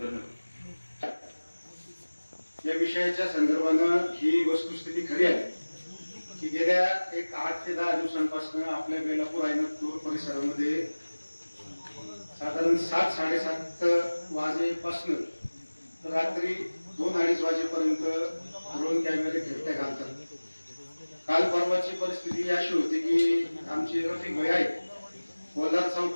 या विषयाच्या संदर्भानं ही वस्तुस्थिती खरी आहे की गेल्या एक 8 ते 10 दिवसांपासून आपल्या बेलापूर आयनपूर परिसरामध्ये साधारण 7-7:30 वाजेपासून रात्री 2-2:30 वाजेपर्यंत ड्रोन कॅमेरे फिरत्या घालतात. काल परवाची परिस्थिती अशी होती की आमचे रफिक भाई आहेत कोल्हार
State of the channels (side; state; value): both; inverted; correlation -1.00